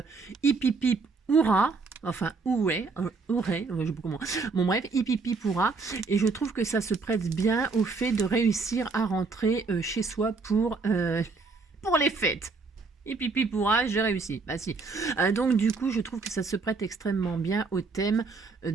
hip hip hip hurrah. Enfin, oué, je sais pas comment. Bon, bref, hip hip hip hurrah. Et je trouve que ça se prête bien au fait de réussir à rentrer chez soi pour les fêtes. Et pipi pourra, j'ai réussi. Si. Donc du coup, je trouve que ça se prête extrêmement bien au thème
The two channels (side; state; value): left; quieter; 4.3 dB